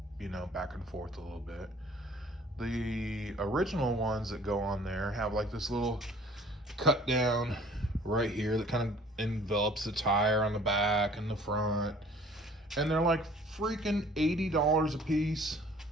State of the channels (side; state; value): both; normal; correlation 0.52